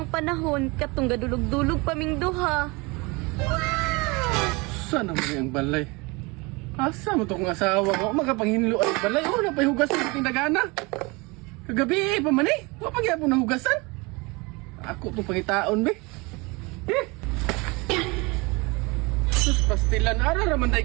panahon katong gadulog-dulog paming duha. Sana mo ang balay. Asa mo to kong asawa ko? Magapanghinlo ang balay. Oh, napayhugasan sa tindagana. Kagabi pa man eh. Huwag pagyapon ng hugasan. Ako itong pangitaon, be. Sus, pastilan. Araraman tayo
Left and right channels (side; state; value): left; quieter; 26.3 dB